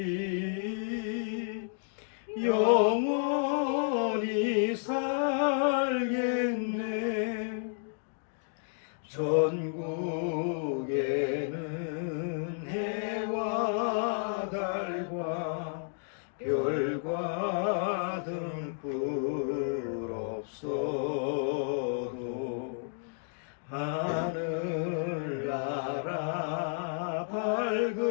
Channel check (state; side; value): silent; right; digital silence